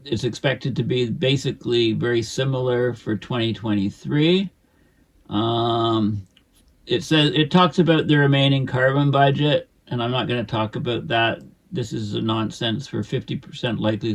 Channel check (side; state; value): both; identical; correlation 1.00